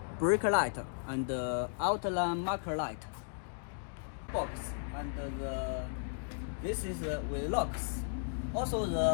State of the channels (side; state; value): right; silent; digital silence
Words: brake light, and the outline marker light. Box, and this is with locks. Also,